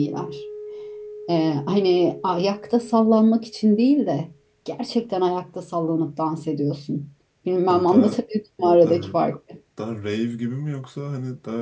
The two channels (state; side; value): identical; both; correlation 1.00